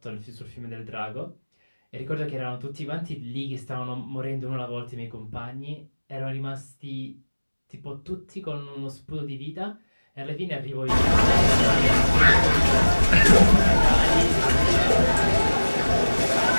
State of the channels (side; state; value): both; inverted; correlation -1.00